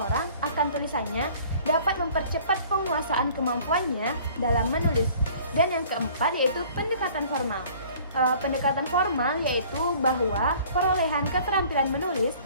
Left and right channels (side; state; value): both; inverted; correlation -0.51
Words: akan tulisannya dapat mempercepat penguasaan kemampuannya dalam menulis. Dan yang keempat yaitu pendekatan formal. Pendekatan formal yaitu bahwa perolehan keterampilan menulis